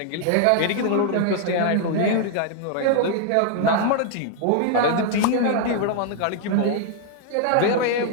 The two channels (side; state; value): both; different; correlation 0.00